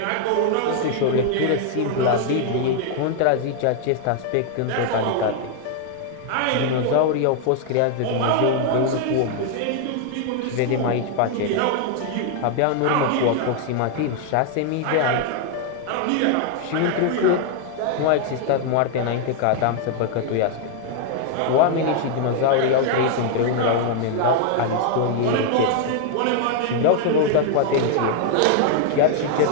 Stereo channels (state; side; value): different; both; correlation 0.00